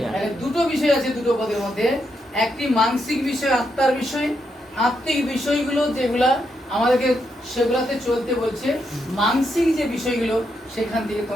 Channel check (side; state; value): both; normal; correlation 0.81